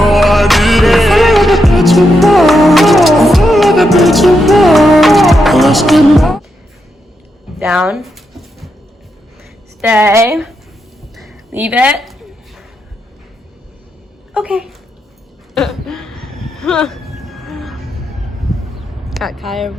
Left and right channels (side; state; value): both; normal; correlation 0.83